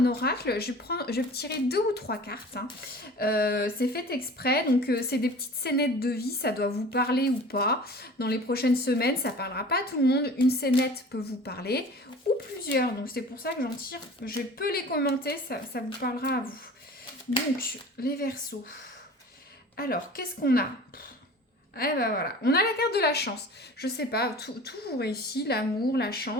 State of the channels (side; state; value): both; normal; correlation 0.42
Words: oracle. Je vais tirer 2 ou 3 cartes. Hein. C'est fait exprès, donc c'est des petites scénettes de vie. Ça doit vous parler ou pas. Dans les prochaines semaines, ça parlera pas à tout le monde. Une scénette peut vous parler ou plusieurs. Donc c'est pour ça que j'en tire. Je peux les commenter, ça vous parlera à vous. Donc les Verseaux. Alors qu'est-ce qu'on a ? Eh ben voilà, on a la carte de la chance. Je sais pas, tout vous réussit, l'amour, la